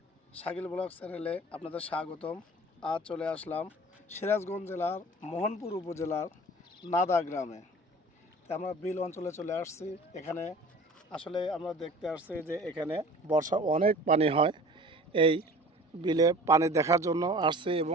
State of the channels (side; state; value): both; normal; correlation 0.43